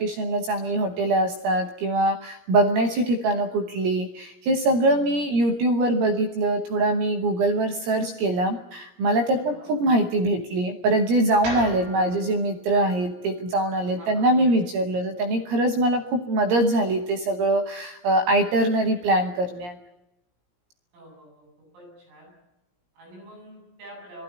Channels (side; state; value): left; late; 17 ms